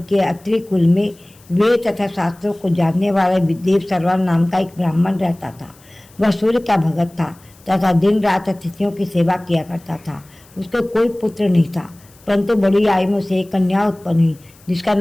के अत्रि कुल में वेद तथा शास्त्रों को जानने वाला विदेव सर्वन नाम का एक ब्राह्मण रहता था। वह सूर्य का भगत था तथा दिन रात अतिथियों की सेवा किया करता था। उसको कोई पुत्र नहीं था, परंतु बड़ी आयु में से एक कन्या उत्पन्न हुई जिसका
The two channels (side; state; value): left; noise; hiss, 28 dB below the sound